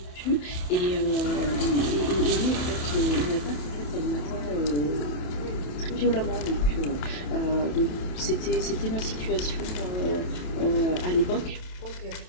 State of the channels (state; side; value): late; right; 28 ms